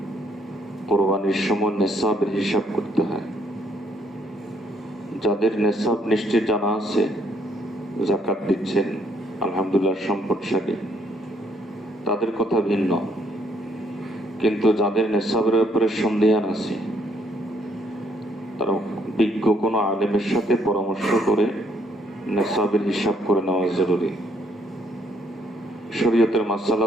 কোরবানির সময় নেসাবের হিসাব করতে হয়। যাদের নেসাব নিশ্চিত জানা আছে, যাকাত দিচ্ছেন, আলহামদুলিল্লাহ সম্পদশালী, তাদের কথা ভিন্ন। কিন্তু যাদের নেসাবের ব্যাপারে সন্দেহান আছে, তারা বিজ্ঞ কোনো আলেমের সাথে পরামর্শ করে নেসাবের হিসাব করে নেওয়া জরুরি। শরীয়তের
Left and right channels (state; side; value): normal; both; correlation 0.69